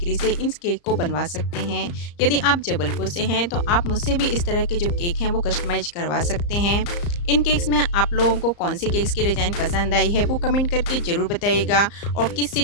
से इन केक को बनवा सकते हैं। यदि आप जबलपुर से हैं तो आप मुझसे भी इस तरह के जो केक हैं वो कस्टमाइज करवा सकते हैं। इन केक्स में आप लोगों को कौन सी केक्स की डिज़ाइन पसंद आई है वो कमेंट करके ज़रूर बताइएगा, और किस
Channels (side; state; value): right; late; 34 ms